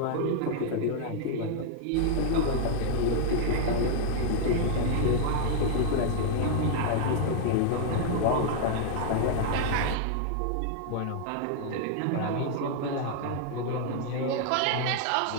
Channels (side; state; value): both; different; correlation 0.00